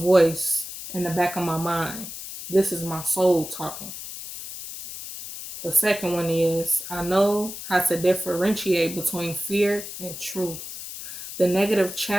in the back of my mind. This is my soul talking. The second one is I know how to differentiate between fear and truth. The negative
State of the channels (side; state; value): left; noise; hiss, 10 dB below the sound